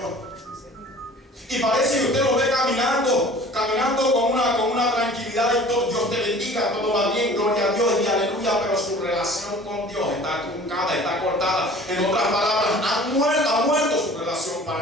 Y parece que usted lo ve caminando con una tranquilidad y todo, Dios te bendiga, todo va bien, gloria a Dios y aleluya, pero su relación con Dios está truncada, está cortada. En otras palabras, ha muerto su relación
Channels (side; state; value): both; normal; correlation 0.46